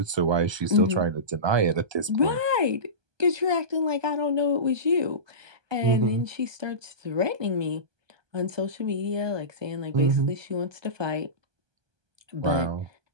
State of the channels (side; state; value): left; late; 1.2 ms